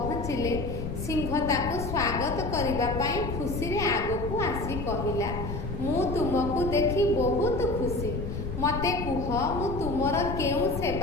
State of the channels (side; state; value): left; noise; rumble, 5 dB below the sound